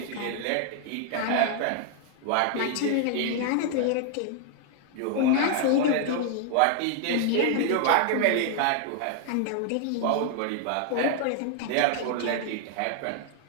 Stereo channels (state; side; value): different; both; correlation 0.00